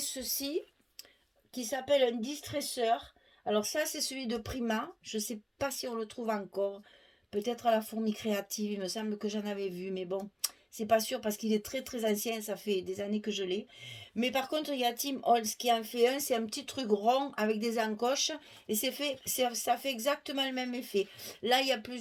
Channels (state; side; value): identical; both; correlation 1.00